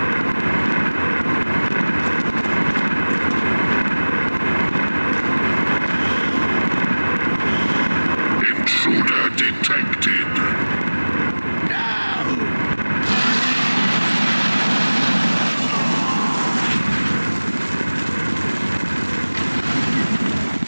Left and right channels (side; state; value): both; inverted; correlation -1.00